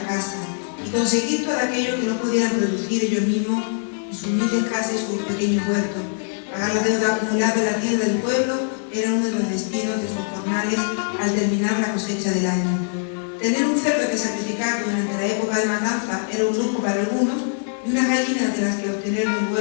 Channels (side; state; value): right; silent; digital silence